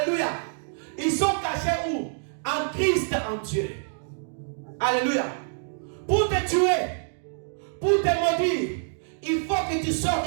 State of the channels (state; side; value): silent; left; digital silence